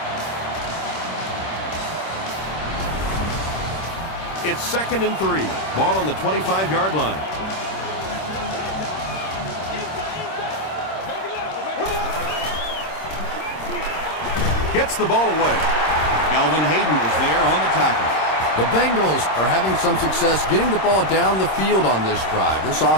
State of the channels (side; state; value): right; late; 26 ms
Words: It's 2nd and 3. Ball on the 25-yard line. Gets the ball away. Kelvin Hayden was there on the tackle. The Bengals are having some success getting the ball down the field on this drive. This